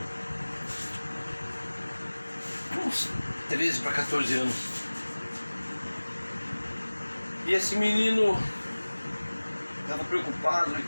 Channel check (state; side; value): inverted; both; correlation -1.00